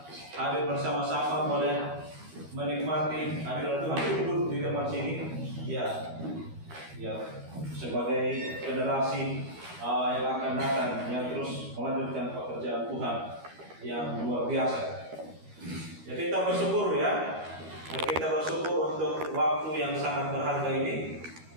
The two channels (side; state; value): left; late; 13 ms